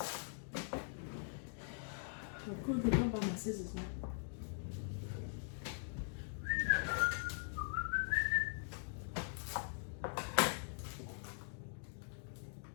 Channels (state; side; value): silent; right; digital silence